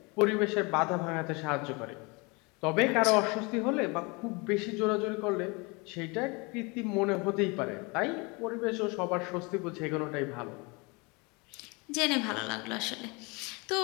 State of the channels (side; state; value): right; quieter; 28.2 dB